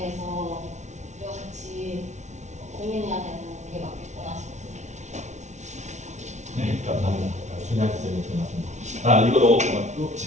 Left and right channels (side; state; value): left; late; 0.33 ms